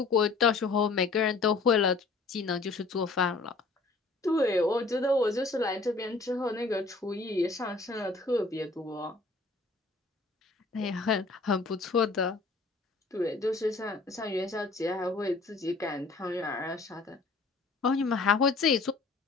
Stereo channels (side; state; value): right; quieter; 3.8 dB